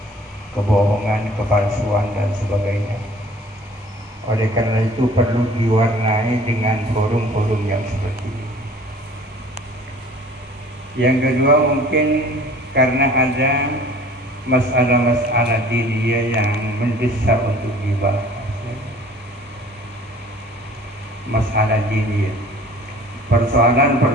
kebohongan, kepalsuan dan sebagainya. Oleh karena itu perlu diwarnai dengan forum-forum yang seperti ini. Yang kedua, mungkin karena ada masalah-masalah diniyah yang mendesak untuk dibahas. Masalah diniyah,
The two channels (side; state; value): both; normal; correlation 0.49